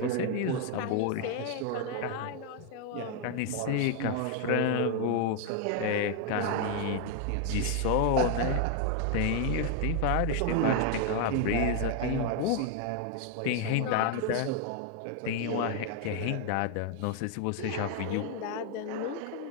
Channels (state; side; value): different; both; correlation 0.00